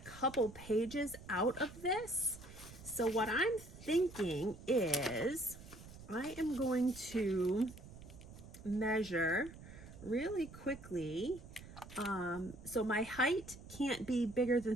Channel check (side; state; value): right; noise; rumble, 16 dB below the sound